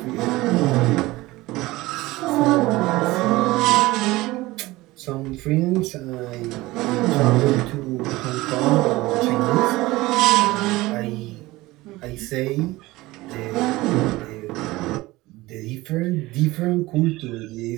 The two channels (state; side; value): quieter; left; 19.5 dB